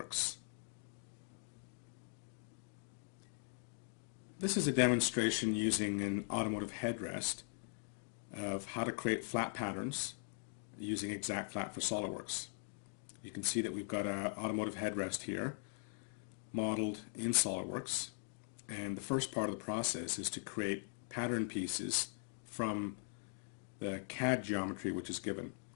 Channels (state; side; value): silent; right; digital silence